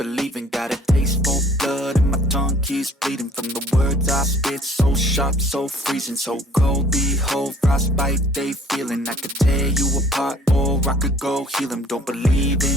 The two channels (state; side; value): normal; both; correlation 0.55